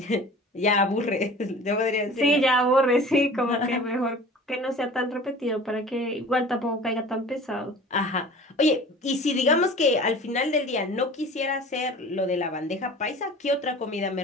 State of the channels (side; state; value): both; normal; correlation 0.42